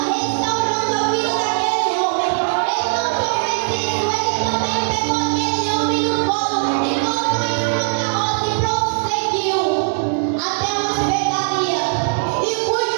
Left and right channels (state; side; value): silent; left; digital silence